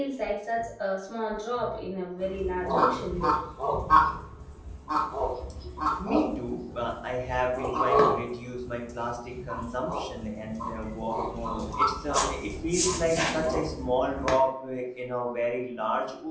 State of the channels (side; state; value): both; identical; correlation 1.00